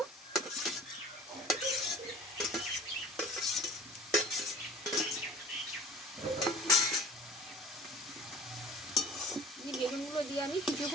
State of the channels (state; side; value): normal; both; correlation 0.44